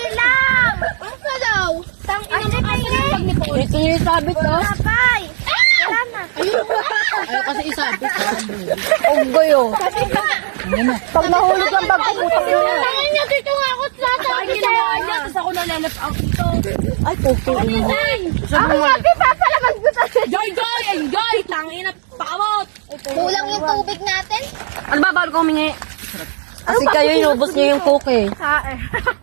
lang. Ang salaw. Tangina mo kasi. Ito yung sabit to. Kapay. Wala na. Ayaw kasi isabit. Unggoy oh. Kasi ka. Pag nahulog ang bag ko, putang ina. Tangin niya dito nga ako sa Ay, ginawa niya. Tapos ako na-left out dito. Ay, puto. Ako nga, papalagan ko tayo. Joy, Joy! Enjoy! Tangina, pakawot! Kulang yung tubig natin. Ano ba, bago ko humingi? Kasi kayo inubos niyo yung coke eh.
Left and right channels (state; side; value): silent; left; 69 dB below the other